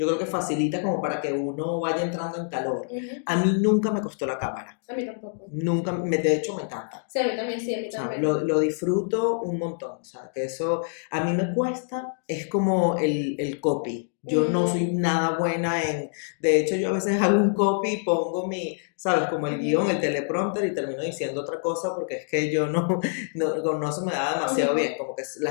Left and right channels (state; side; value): silent; right; digital silence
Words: creo que facilita como para que uno vaya entrando en calor. A mí nunca me costó la cámara. A mí tampoco. Nunca, de hecho me encanta. Sí, a mí también, sí, a mí también. O sea, lo disfruto un montón, o sea, que eso a mí me cuesta, es como el copy. Yo no soy nada buena en... De hecho, yo a veces hago un copy y pongo ¿sabes? Como el guión, el teleprompter y termino diciendo otra cosa porque es que yo no se me da demasiado bien. Como que la